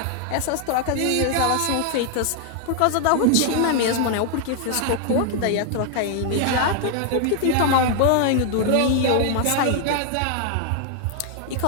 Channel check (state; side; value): different; both; correlation 0.00